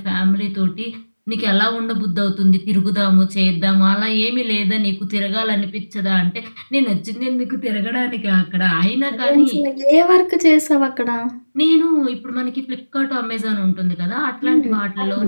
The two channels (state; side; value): inverted; both; correlation -1.00